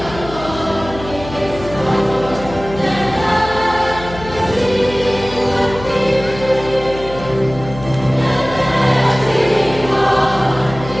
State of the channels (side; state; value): left; noise; hum, 13 dB below the sound